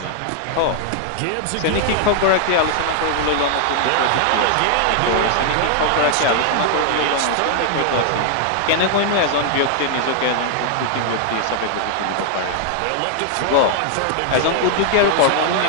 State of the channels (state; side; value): different; both; correlation 0.00